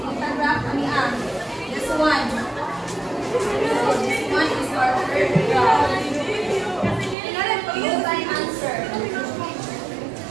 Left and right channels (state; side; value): drops out; left; at 7.2 s